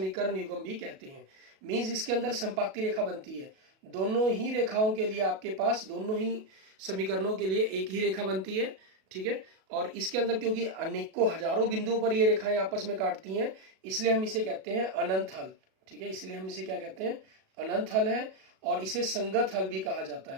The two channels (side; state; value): left; late; 37 ms